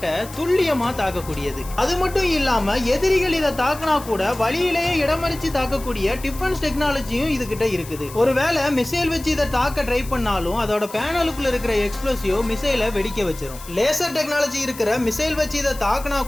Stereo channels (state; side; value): noise; left; hiss, 16 dB below the sound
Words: துல்லியமா தாக்கக்கூடியது. அது மட்டும் இல்லாம எதிரிகள் இதை தாக்கினா கூட வழியிலேயே இடமறிச்சு தாக்கக்கூடிய டிஃபென்ஸ் டெக்னாலஜியும் இது கிட்ட இருக்குது. ஒருவேளை மிசைல் வச்சு இதை தாக்க ட்ரை பண்ணாலும் அதோட பேனலுக்குள்ள இருக்கிற எக்ஸ்ப்ளோசிவ் மிசைலை வெடிக்க வச்சிரும். லேசர் டெக்னாலஜி இருக்கிற மிசைல் வச்சு இதை தாக்கினா